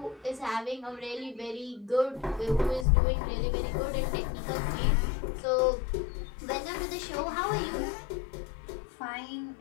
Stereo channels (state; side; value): drops out; right; at 2.9 s